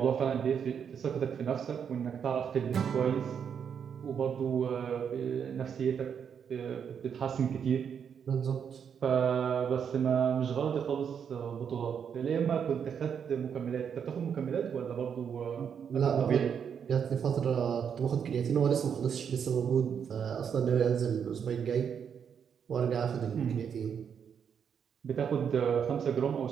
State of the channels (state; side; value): quieter; left; 7.5 dB